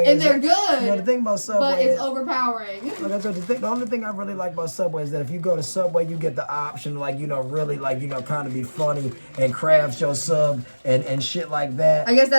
and they're good. The thing about Subway but it's overpowering. Like I said, the only thing I really like about Subway is that if you go to Subway, you get the option, really, kind of be funny and craft your sub and shit like that. I guess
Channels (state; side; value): inverted; both; correlation -1.00